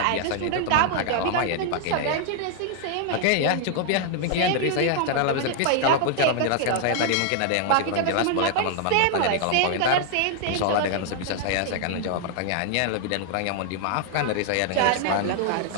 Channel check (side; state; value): both; different; correlation 0.00